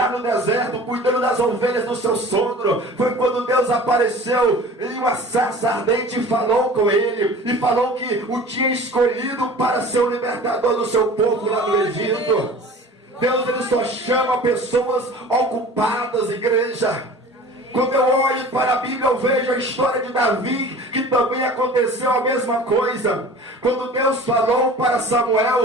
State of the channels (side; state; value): both; normal; correlation 0.42